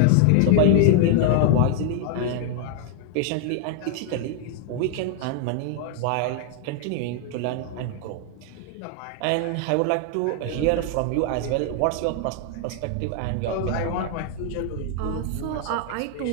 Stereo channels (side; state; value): both; different; correlation 0.00